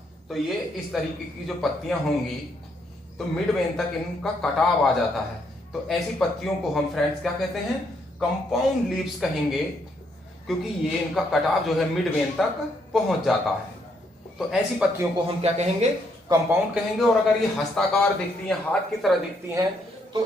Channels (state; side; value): normal; both; correlation 0.73